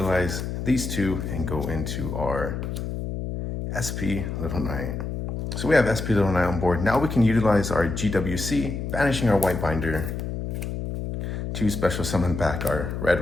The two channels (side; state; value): left; noise; hum, 4 dB below the sound